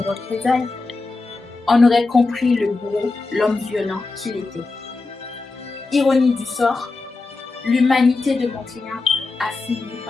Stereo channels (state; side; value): quieter; right; 3.7 dB